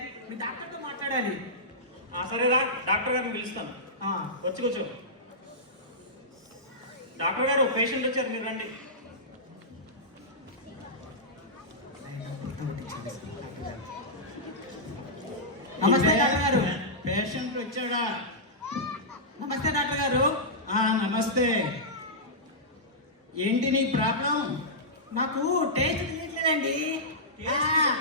మీ డాక్టర్తో మాట్లాడాలి. సరేరా, డాక్టర్ గారిని పిలుస్తాను. వచ్చి కూర్చో. డాక్టర్ గారు, పేషెంట్ వచ్చారు, మీరు రండి. నమస్తే డాక్టర్ గారు. పేషెంట్ వచ్చాడా? నమస్తే డాక్టర్ గారు. నమస్తే. ఏంటి నీ ప్రాబ్లం? నాకు టేస్ట్ తెలియట్లేదండి.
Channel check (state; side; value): normal; both; correlation -0.14